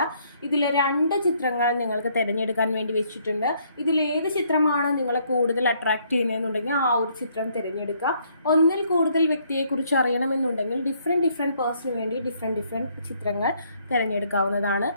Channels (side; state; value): both; inverted; correlation -0.68